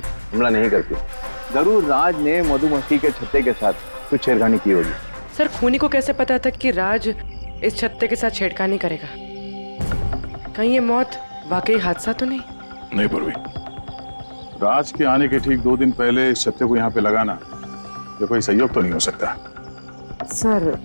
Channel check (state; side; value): inverted; both; correlation -1.00